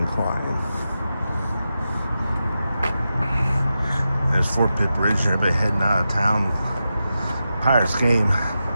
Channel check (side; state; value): both; inverted; correlation -0.90